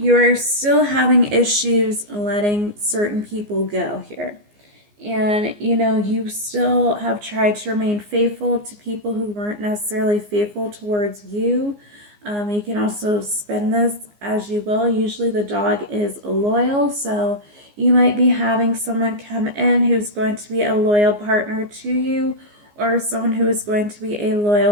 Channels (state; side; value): late; left; 14 ms